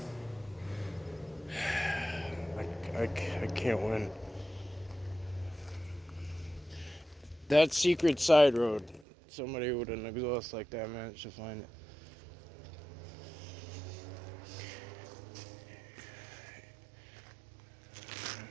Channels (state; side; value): drops out; left; at 9.1 s